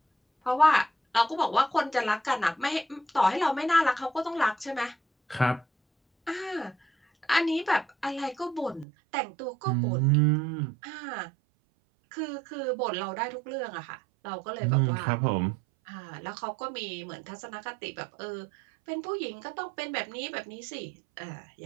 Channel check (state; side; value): drops out; left; at 8.8 s